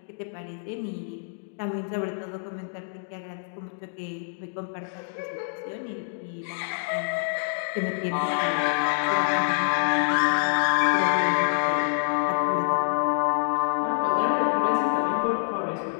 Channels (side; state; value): right; silent; digital silence